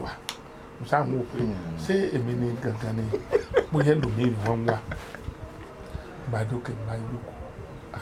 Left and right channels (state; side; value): identical; both; correlation 1.00